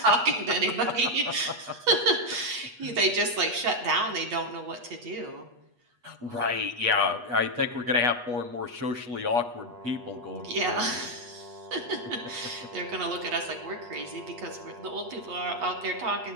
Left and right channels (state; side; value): late; left; 8.3 ms